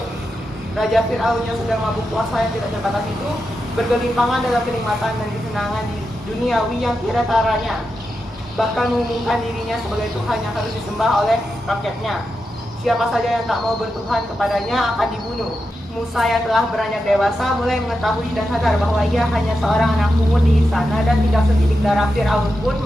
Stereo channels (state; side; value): normal; both; correlation 0.88